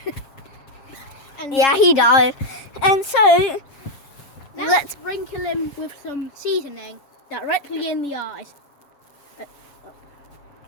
And Yeah, he died. And so, let's sprinkle him with some seasoning directly in the eyes.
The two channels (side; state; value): right; late; 7.4 ms